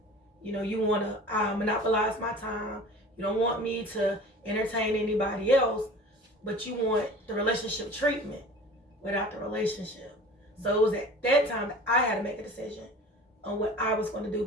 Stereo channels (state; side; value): normal; both; correlation 0.41